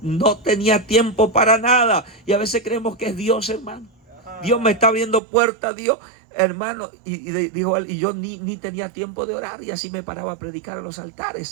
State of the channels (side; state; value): left; drops out; at 5.2 s